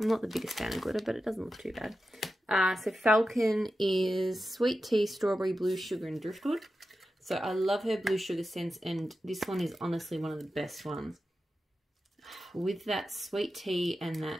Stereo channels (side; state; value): both; normal; correlation 0.91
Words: I'm not the biggest fan of glitter, but it doesn't look too bad. So Falcon is sweet tea, strawberry, blue sugar and driftwood. So I love her blue sugar scents, and this one is honestly one of the best ones. With that sweet tea and